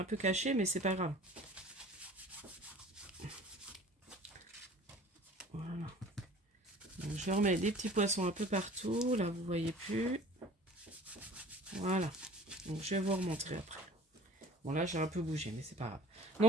peu caché, mais c'est pas grave. Voilà. Donc, je remets des petits poissons un peu partout. Là, vous voyez plus. Voilà. Donc, je vais vous remontrer après. Bon, là, j'ai un peu bougé, mais c'est pas grave.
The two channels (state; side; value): normal; both; correlation 0.45